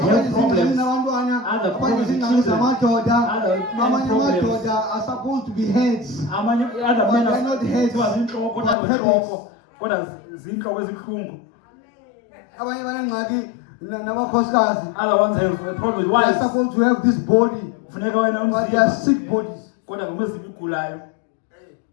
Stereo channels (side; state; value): right; drops out; at 8.8 s